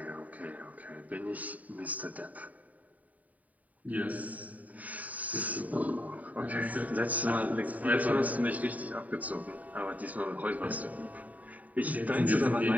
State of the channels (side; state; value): left; late; 0.072 ms